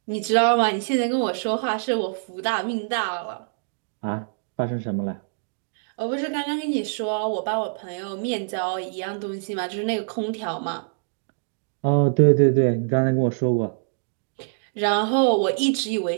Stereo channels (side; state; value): left; silent; digital silence